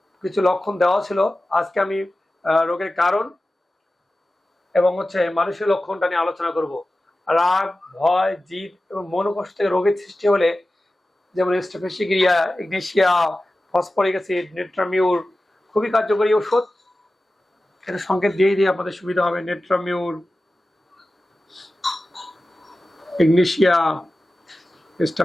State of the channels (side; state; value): both; normal; correlation 0.95